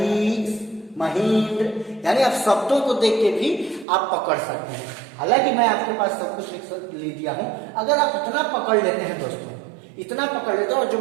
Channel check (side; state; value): left; drops out; at 3.9 s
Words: महेंद्र, यानी आप शब्दों को देख के भी आप पकड़ सकते हैं। हालांकि मैं आपके पास सब कुछ लिख दिया हूं, अगर आप इतना पकड़ लेते हैं दोस्तों, इतना पकड़ लेते हैं और जो